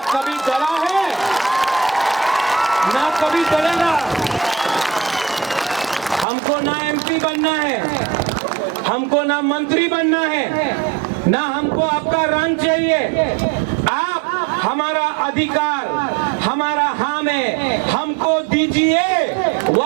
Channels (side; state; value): left; drops out; at 6.2 s